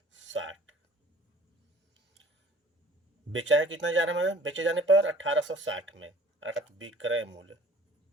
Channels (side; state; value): both; normal; correlation 0.49